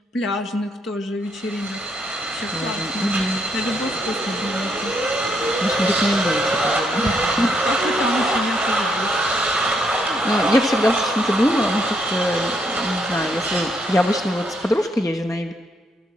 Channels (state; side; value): normal; both; correlation 0.75